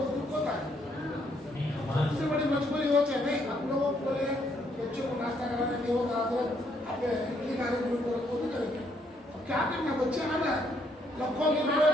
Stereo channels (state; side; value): normal; both; correlation 0.71